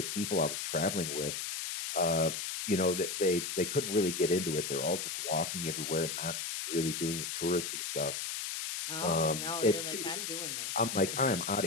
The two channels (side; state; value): left; noise; hiss, 4 dB below the sound